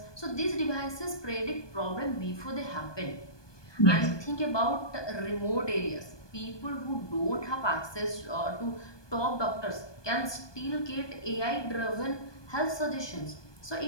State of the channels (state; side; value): late; right; 1.2 ms